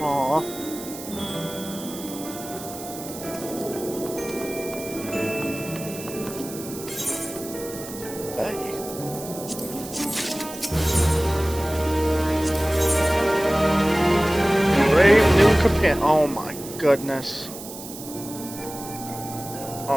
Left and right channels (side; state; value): right; noise; hiss, 13 dB below the sound